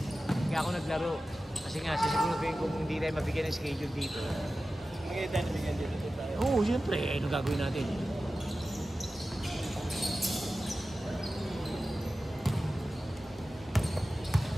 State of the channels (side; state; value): both; normal; correlation 0.94